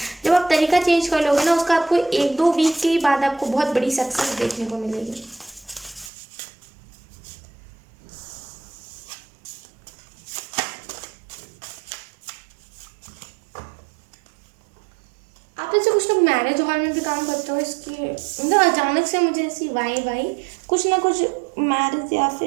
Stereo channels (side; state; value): left; drops out; at 6.1 s